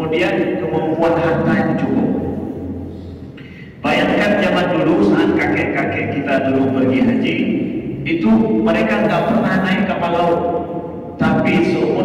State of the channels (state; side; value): identical; both; correlation 1.00